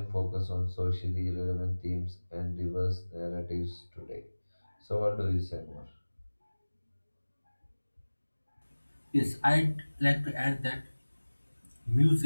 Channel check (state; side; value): inverted; both; correlation -1.00